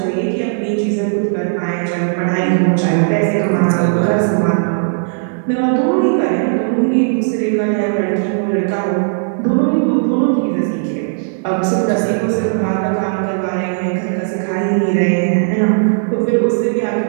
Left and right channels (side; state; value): left; silent; digital silence